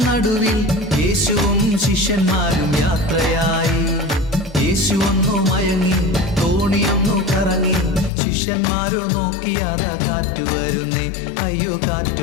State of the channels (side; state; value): right; drops out; at 8.1 s